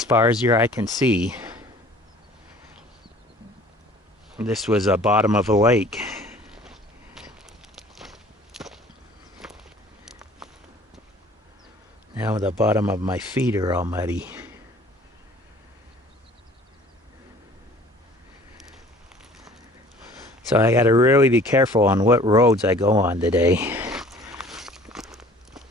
far as your eye can see, this was a bottom of a lake. Now the bottom of my feet are all muddy. So I gotta really be careful on what roads I go on today,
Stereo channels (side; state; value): both; normal; correlation 0.50